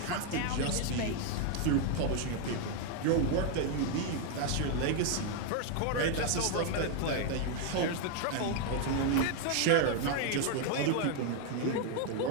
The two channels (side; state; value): both; different; correlation 0.01